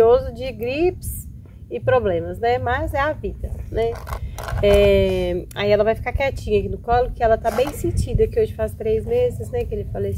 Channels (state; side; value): identical; both; correlation 1.00